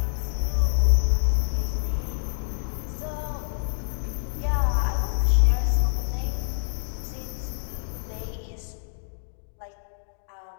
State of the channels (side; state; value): right; silent; digital silence